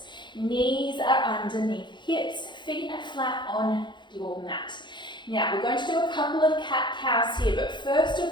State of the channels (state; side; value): late; right; 0.22 ms